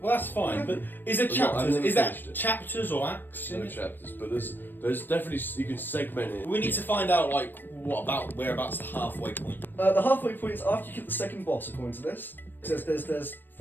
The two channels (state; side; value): late; right; 0.093 ms